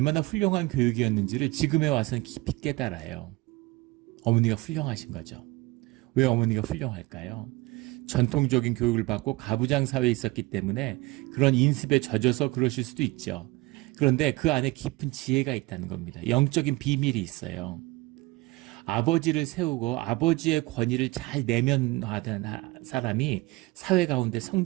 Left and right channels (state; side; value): quieter; left; 21.4 dB